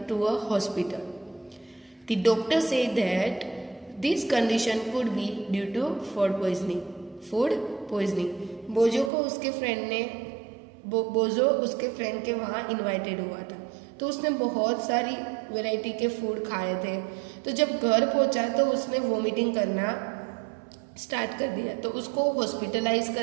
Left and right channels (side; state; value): left; drops out; at 9.1 s